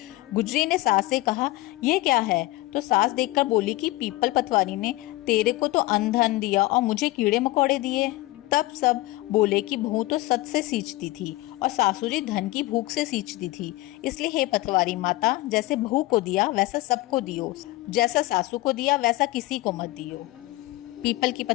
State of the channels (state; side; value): quieter; right; 19.0 dB